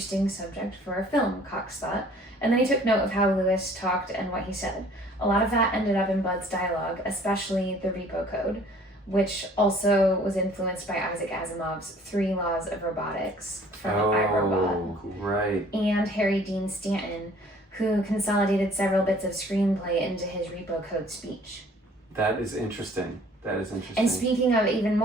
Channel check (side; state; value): both; normal; correlation 0.54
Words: subject for a film, Cox thought, and then he took note of how Lewis talked and what he said. A lot of that ended up in Bud's dialogue, especially the Repo Code, which also was influenced by Isaac Asimov's 3 Laws of Robotics from iRobot. Right. And Harry Dean Stanton, who consolidated several bits of screenplay into his Repo Code speech. That is interesting. And speaking of even